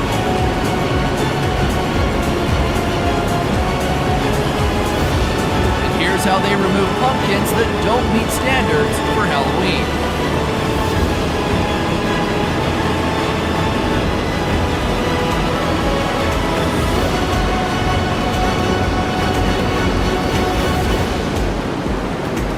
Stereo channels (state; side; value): identical; both; correlation 1.00